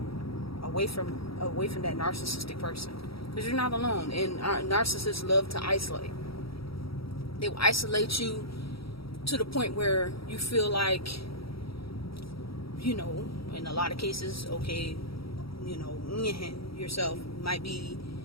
Away from that narcissistic person, because you're not alone. And narcissists love to isolate. They will isolate you to the point where you feel like, in a lot of cases, okay, yourself might be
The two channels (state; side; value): late; right; 0.75 ms